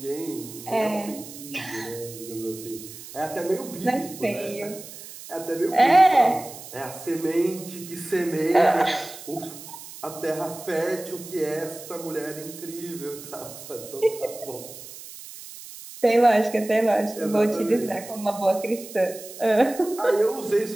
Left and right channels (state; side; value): noise; right; hiss, 14 dB below the sound